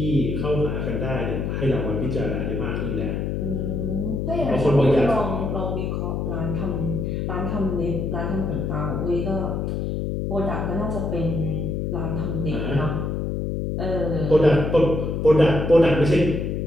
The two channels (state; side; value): noise; left; hum, 1 dB below the sound